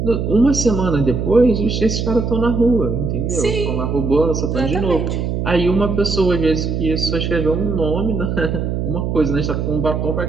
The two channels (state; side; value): noise; right; hum, 1 dB below the sound